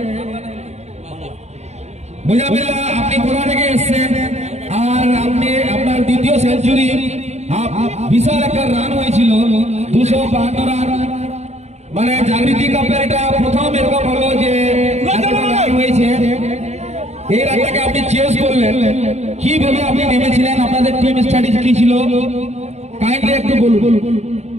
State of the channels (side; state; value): left; late; 0.32 ms